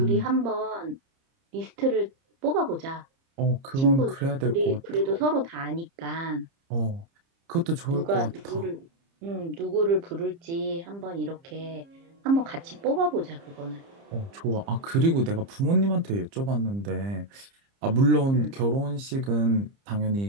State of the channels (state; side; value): late; left; 30 ms